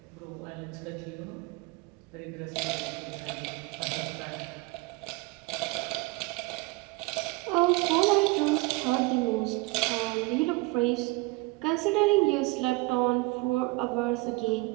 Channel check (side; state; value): left; quieter; 23.4 dB